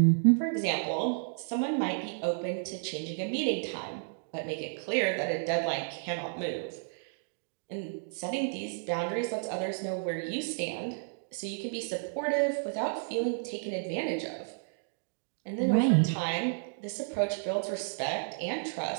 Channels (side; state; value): left; silent; digital silence